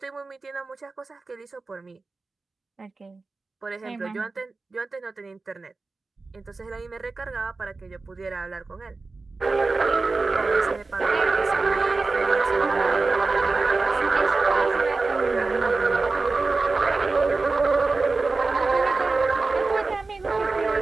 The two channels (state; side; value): quieter; left; 3.8 dB